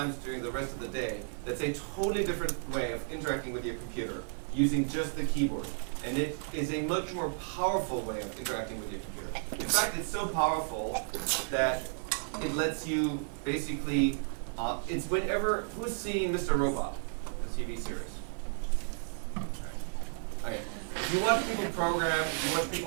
during the rest of the day that's a totally different way of interacting with your computer using just the keyboard. And it is a much more powerful way of interacting with your computer. In fact, it's so powerful that it lets you basically, it's whenever, who's seen Mr. Robot, the TV series? Okay. If you watch people program, if you watch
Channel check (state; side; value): silent; left; 56 dB below the other